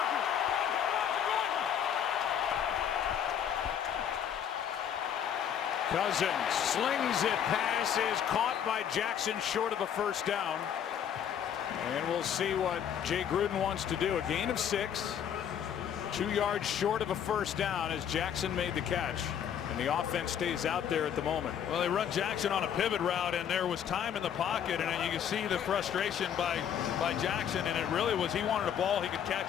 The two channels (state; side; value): quieter; right; 8.9 dB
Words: Cousins slings it, pass is caught by Jackson short of a first down. And we'll see what Jay Gruden wants to do. A gain of 6, 2 yards short of a first down as Jackson made the catch. And the offense stays out there at the moment. Well, they run Jackson on a pivot route, and there was time in the pocket, and you can see the frustration by Jackson, and it really was he wanted a ball he could